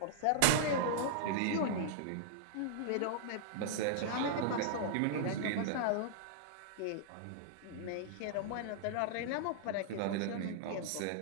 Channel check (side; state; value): both; different; correlation -0.02